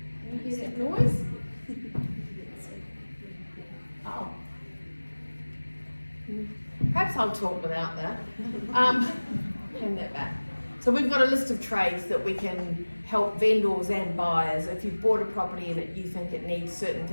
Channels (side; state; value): both; inverted; correlation -1.00